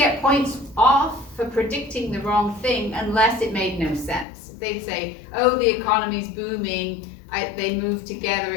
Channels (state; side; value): drops out; right; at 4.2 s